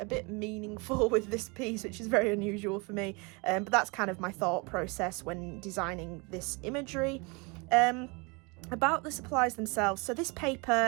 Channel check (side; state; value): left; quieter; 29.2 dB